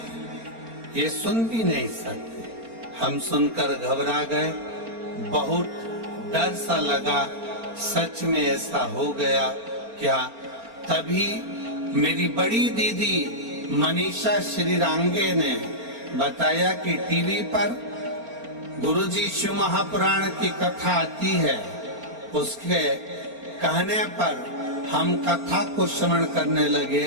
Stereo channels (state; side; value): late; left; 4.4 ms